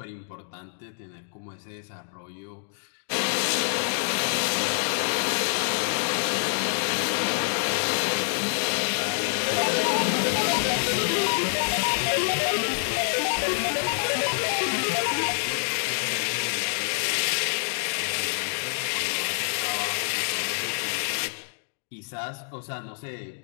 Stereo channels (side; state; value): right; silent; digital silence